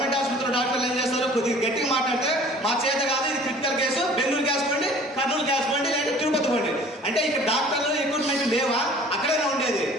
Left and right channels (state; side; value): normal; both; correlation 0.49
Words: ఆసుపత్రిలో డాక్టర్లు ఏం చేస్తారు, కొద్దిగా గట్టిగా మాట్లాడితే మా చేత కాదు, ఇది క్రిటికల్ కేసు, బెంగళూరు గ్యాస్ పండి, కర్నూలు గ్యాస్ పండి, లేదా తిరుపతి పండి అంటే ఇక్కడ డాక్టర్లు ఎక్విప్మెంట్ లేవా, అక్కడైనా ఉండేది.